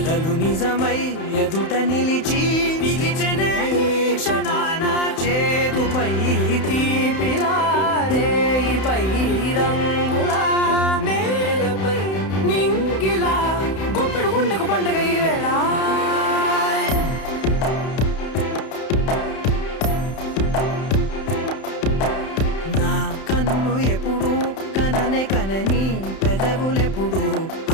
నిజమై ఎదుట నిలిచి పిలిచెనే ఈ క్షణాన చేతుపై తీపిలారే పై రంగులా నేలపై నింగిలా గుప్పెడు గుండెకు పండుగ ఈ వేళ. నా కన్ను ఎప్పుడు కననే కనని పెదవులెప్పుడు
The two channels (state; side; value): late; right; 31 ms